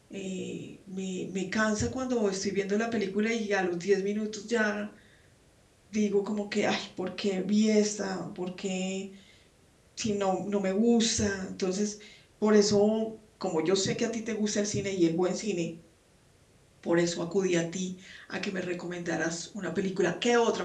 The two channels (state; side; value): identical; both; correlation 1.00